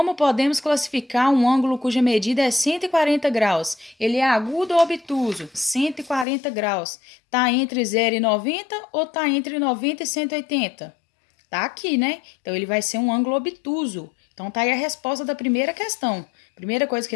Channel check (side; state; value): right; drops out; at 6.2 s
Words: podemos classificar um ângulo cuja medida é 140 graus? Ele é agudo ou obtuso? 140 graus. Tá entre 0 e 90 ou tá entre 90 e 180? Tá aqui, né? Então, ele vai ser um ângulo obtuso. Então, tá aí a resposta da primeira questão. Primeira coisa que